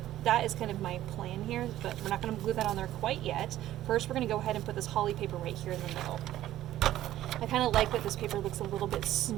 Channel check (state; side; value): quieter; left; 13.6 dB